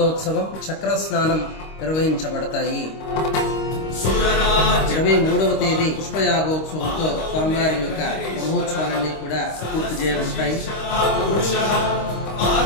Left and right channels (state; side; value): late; right; 25 ms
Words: చక్ర స్నానం నిర్వహించబడతాయి. 23వ తేదీ పుష్పయాగోత్సవంతో స్వామివారి యొక్క బ్రహ్మోత్సవాలన్నీ కూడా పూర్తి చేయబడతాయి.